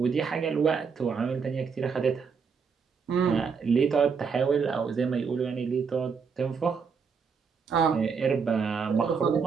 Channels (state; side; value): quieter; left; 5.8 dB